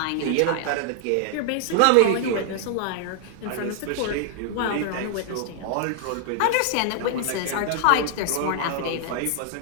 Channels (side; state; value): both; different; correlation 0.00